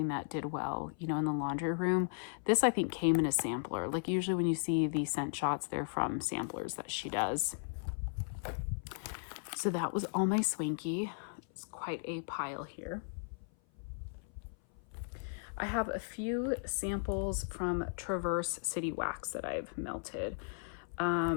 that did well, you know, in the laundry room. This I think came in a sampler. Like usually when you see these scent shots, they're from samplers that she does. So that was all my Swanky. It's quite a pile here. I have a few samples from Traverse City Wax that I've melted.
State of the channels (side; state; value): right; silent; 54 dB below the other